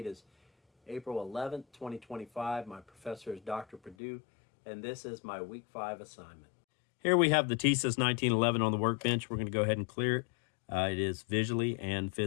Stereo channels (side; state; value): right; drops out; at 4.0 s